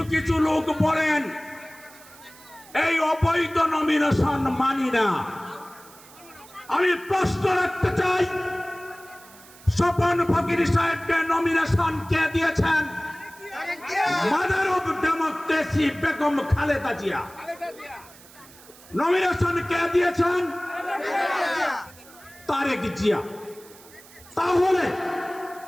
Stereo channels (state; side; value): noise; right; hiss, 22 dB below the sound